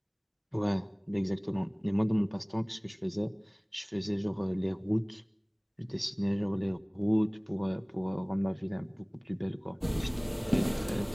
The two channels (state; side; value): identical; both; correlation 1.00